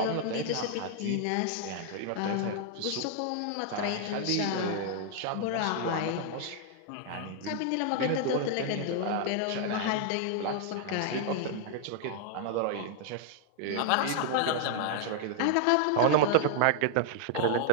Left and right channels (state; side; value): different; both; correlation -0.01